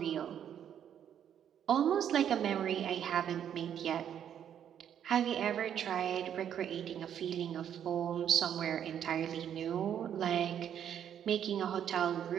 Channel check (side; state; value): left; quieter; 9.4 dB